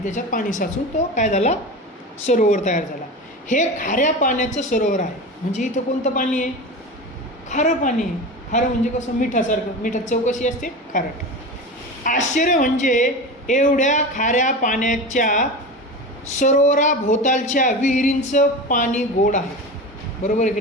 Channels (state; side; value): normal; both; correlation 0.27